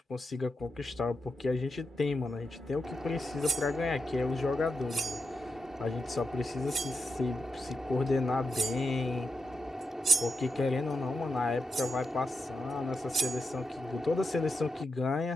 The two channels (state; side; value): normal; both; correlation 0.86